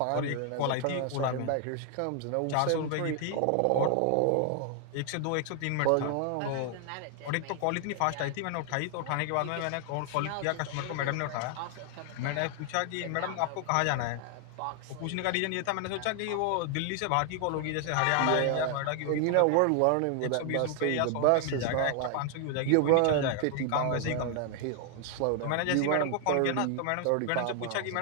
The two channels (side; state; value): both; different; correlation 0.00